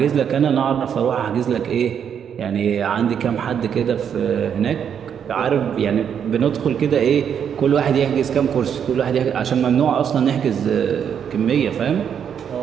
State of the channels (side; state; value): left; quieter; 8.1 dB